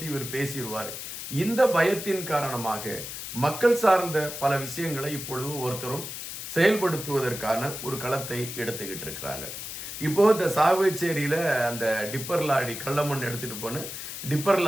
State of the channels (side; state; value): left; noise; hiss, 8 dB below the sound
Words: இவர் பேசிடுவார். இந்த பயத்தின் காரணமாக மக்கள் சார்ந்த பல விஷயங்களை இப்பொழுது ஒருத்தரும் செயல்படுத்துவதற்கான ஒரு களத்தை எடுத்துக்கிட்டு இருக்கிறாங்க. இப்போது இந்த சாவகச்சேரியில் அந்த டிப்பர் லாரி கள்ளமண் எடுத்துகிட்டு போன டிப்பர்